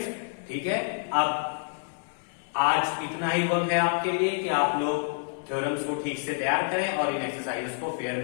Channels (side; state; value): right; silent; 59 dB below the other